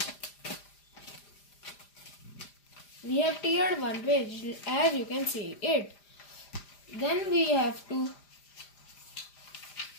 We have teared one page as you can see it. Then we have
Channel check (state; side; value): late; right; 5.0 ms